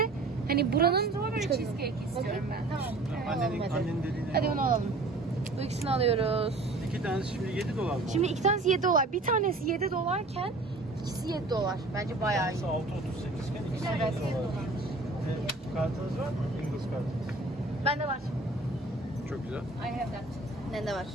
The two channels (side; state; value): left; quieter; 3.1 dB